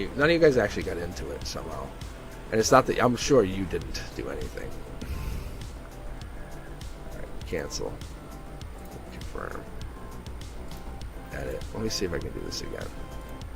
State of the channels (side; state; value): both; identical; correlation 1.00